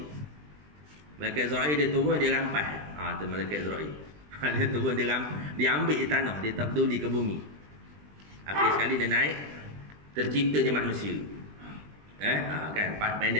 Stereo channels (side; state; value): left; late; 20 ms